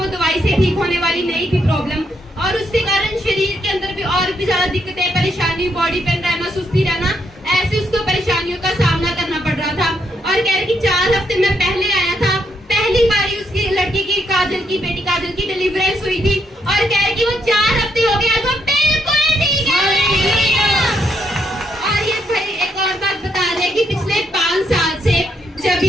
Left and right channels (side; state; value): both; normal; correlation 0.77